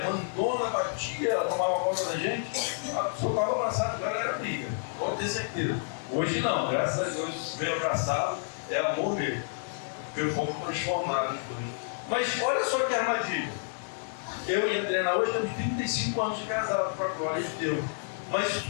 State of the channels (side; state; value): right; silent; digital silence